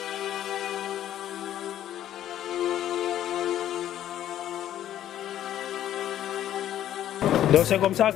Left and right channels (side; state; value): right; quieter; 11.7 dB